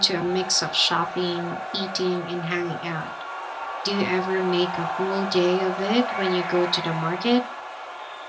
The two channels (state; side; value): identical; both; correlation 1.00